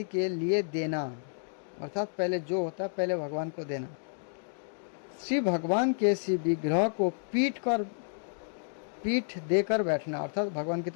के लिए देना अर्थात पहले जो होता है पहले भगवान को देना, श्री भगवान के श्री विग्रह को पीठ देकर बैठना अर्थात भगवान की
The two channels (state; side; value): silent; right; digital silence